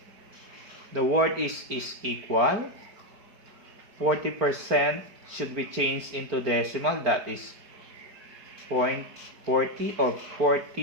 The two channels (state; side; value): late; left; 4.4 ms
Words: The word is equal. 40% should be changed into decimal. That is 0.40 or